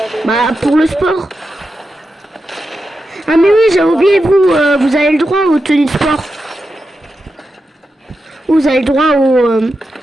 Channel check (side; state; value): both; normal; correlation 0.89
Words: des. Bah, pour le sport. Ah, mais oui, j'ai oublié, vous avez le droit aux tenues de sport. Vous avez le droit